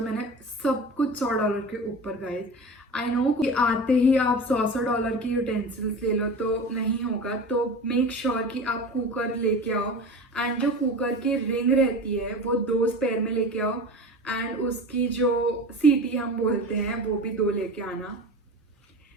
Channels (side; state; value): both; normal; correlation 0.32